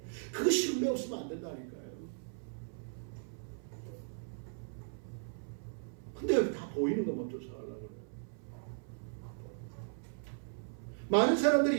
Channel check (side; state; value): left; silent; 53 dB below the other